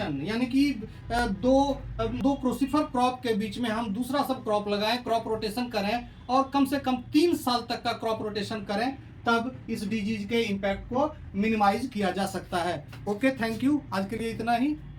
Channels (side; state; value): both; identical; correlation 1.00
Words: यानी कि दो क्रोसिफर क्रॉप के बीच में हम दूसरा सब क्रॉप लगाएं, क्रॉप रोटेशन करें और कम से कम 3 साल तक का क्रॉप रोटेशन करें, तब इस डिजीज के इम्पैक्ट को मिनिमाइज किया जा सकता है। ओके, थैंक यू, आज के लिए इतना ही।